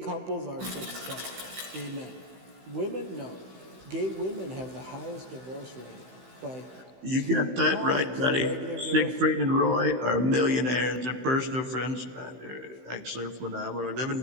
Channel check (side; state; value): left; late; 16 ms